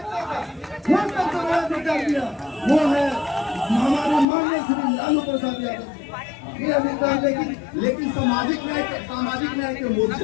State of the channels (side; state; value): right; drops out; at 4.2 s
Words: का वो सब समाज अधिकार दिया। वो है हमारे माननीय श्री लालू प्रसाद यादव ये अधिकार। लेकिन सामाजिक न्याय के